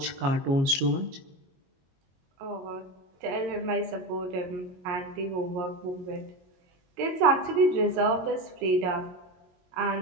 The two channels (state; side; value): late; left; 22 ms